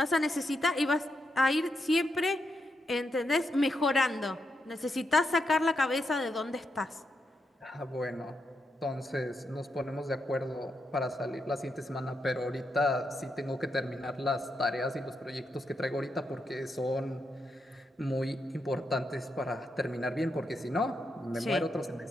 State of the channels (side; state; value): both; normal; correlation 0.83